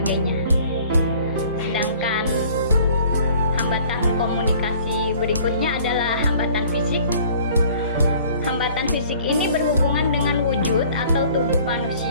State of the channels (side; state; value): both; inverted; correlation -0.52